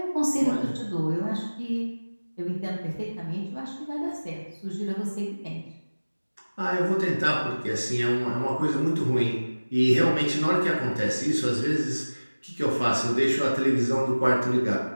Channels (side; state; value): both; inverted; correlation -1.00